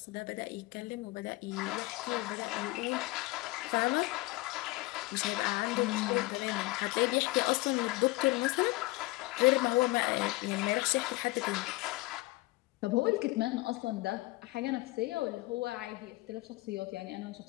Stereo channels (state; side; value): quieter; right; 21.7 dB